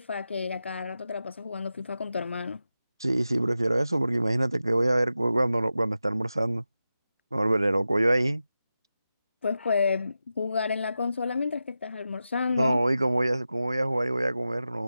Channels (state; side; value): inverted; both; correlation -0.92